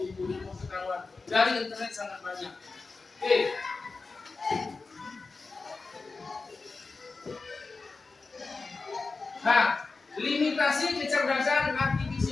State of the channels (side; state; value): right; quieter; 4.0 dB